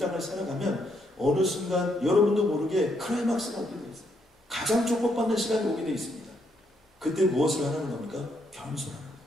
살아가면 어느 순간 여러분도 모르게 클라이막스가 오게 되어 있어요. 가장 축복받는 시간이 오게 되어 있습니다. 그때 무엇을 하라는 겁니까? 겸손하는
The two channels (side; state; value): both; normal; correlation 0.75